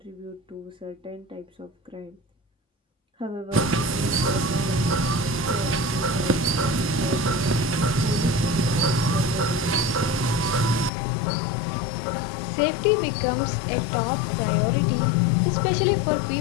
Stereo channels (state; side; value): drops out; right; at 10.9 s